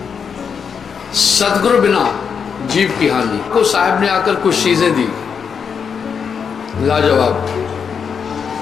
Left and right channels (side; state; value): right; quieter; 6.6 dB